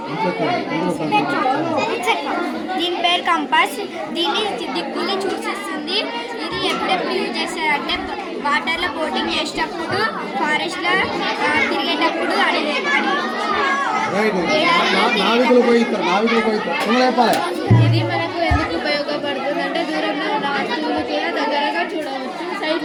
దీని పేరు కంపాస్. దీన్ని దిక్కుల్ని చూసిస్తుంది. ఇది ఎప్పుడెప్పుడు యూజ్ చేస్తారంటే వాటర్లో బోటింగ్ చేసేటప్పుడు, ఫారెస్ట్లో తిరిగేటప్పుడు ఇది మనకు ఎందుకు ఉపయోగపడుతుంది అంటే దూరంలో ఉన్న వస్తువులు కూడా దగ్గరగా చూడవచ్చు.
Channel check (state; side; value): identical; both; correlation 1.00